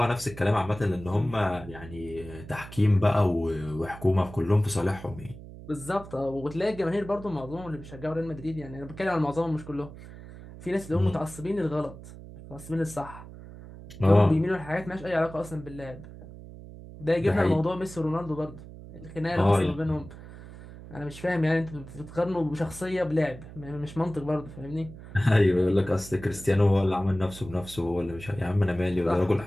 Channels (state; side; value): noise; right; hum, 15 dB below the sound